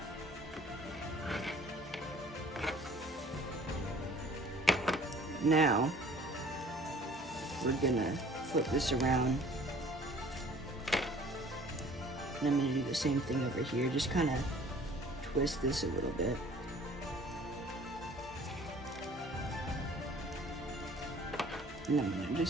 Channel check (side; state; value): both; normal; correlation 0.52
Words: Now, we're gonna flip this around. And I'm gonna do the same thing over here. Just kind of twist this a little bit. And I'm gonna